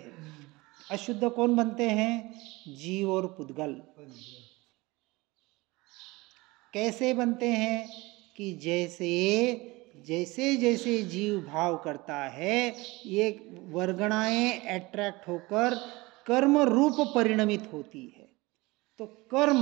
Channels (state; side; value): quieter; left; 22.3 dB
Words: अशुद्ध कौन बनते हैं? जीव और पुद्गल। कैसे बनते हैं? कि जैसे जैसे जीव भाव करता है, ये वर्गणाएं अट्रैक्ट होकर कर्म रूप परिणमित होती है। तो